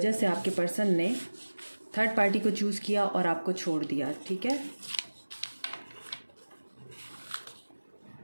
से आपके पर्सन ने थर्ड पार्टी को चूज़ किया और आपको छोड़ दिया। ठीक है,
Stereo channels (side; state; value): both; inverted; correlation -1.00